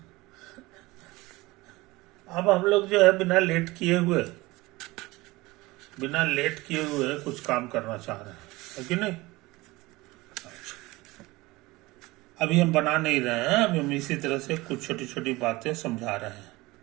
अब हम लोग जो है बिना लेट किए हुए कुछ काम करना चाह रहे हैं, है कि नहीं? अभी हम बना नहीं रहे हैं, अभी हम इसी तरह से कुछ छोटी छोटी बातें समझा रहे हैं।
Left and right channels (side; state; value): left; quieter; 21.0 dB